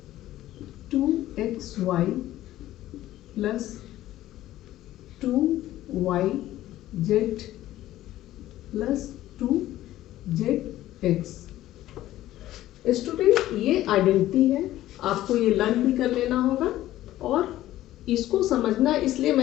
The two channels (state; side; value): quieter; right; 14.5 dB